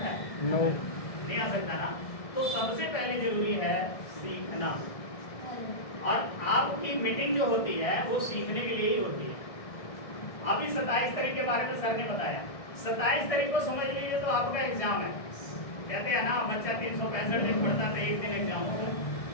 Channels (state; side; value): late; right; 1.6 ms